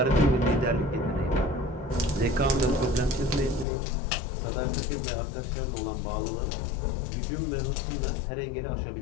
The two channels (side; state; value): right; drops out; at 3.7 s